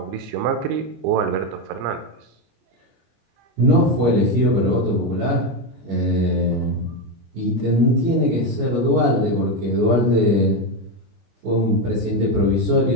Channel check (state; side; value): late; left; 25 ms